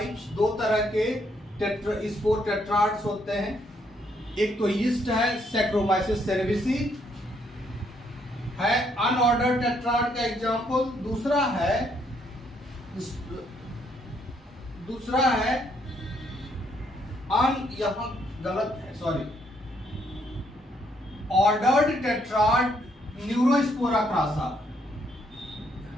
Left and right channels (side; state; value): both; normal; correlation 0.72